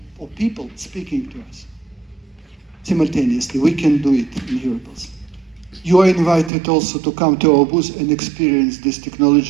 people speaking to us simultaneously. We can do it in Hearables. You are invited also to come to our booth and experience this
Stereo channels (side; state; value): left; drops out; at 6.5 s